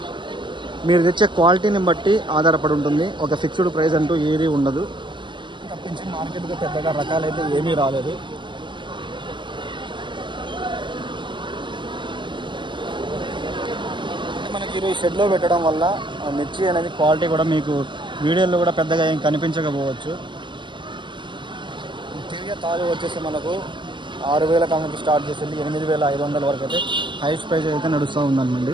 మీరు తెచ్చే క్వాలిటీని బట్టి ఆధారపడి ఉంటుంది. ఒక ఫిక్స్డ్ ప్రైస్ అంటూ ఏది ఉండదు. తప్పించి మార్కెట్గా పెద్దగా రకాలైతే ఏమీ రాలేదు. మనకి ఈరోజు షెడ్లో పెట్టడం వల్ల మిర్చి అనేది క్వాలిటీ కూడా మీకు వీడియోలో కూడా పెద్దగా ఏం కనిపించకపోవచ్చు. తిరిగే తాలు వచ్చేసి మనకు 6,000 కానుంచి స్టార్ట్ చేసింది 8,500 వరకు అయితే హైయెస్ట్ ప్రైస్ అయితే నడుస్తూ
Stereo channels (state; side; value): late; left; 0.23 ms